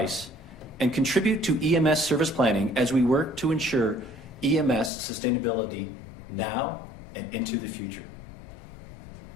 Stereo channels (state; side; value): drops out; right; at 4.9 s